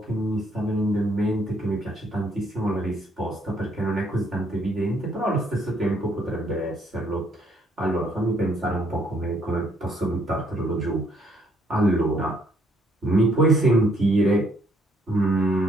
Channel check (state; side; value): normal; both; correlation 0.68